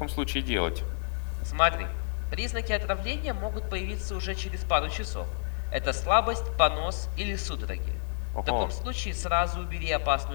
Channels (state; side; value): silent; right; 58 dB below the other